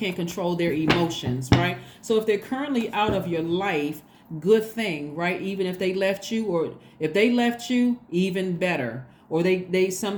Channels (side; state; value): both; identical; correlation 1.00